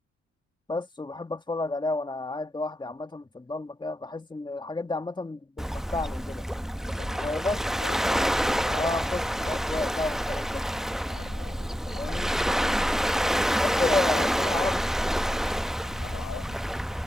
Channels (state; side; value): normal; both; correlation 0.89